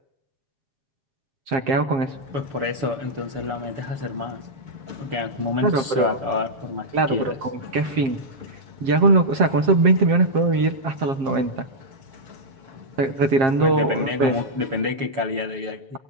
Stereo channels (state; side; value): late; left; 7.5 ms